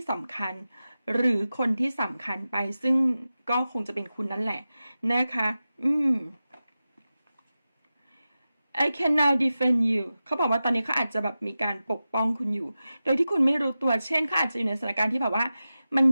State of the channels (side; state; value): both; inverted; correlation -0.93